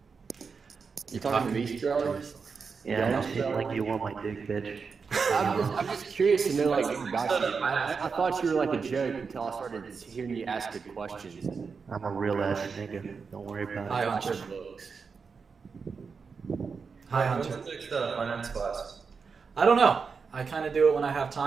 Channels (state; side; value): quieter; left; 5.3 dB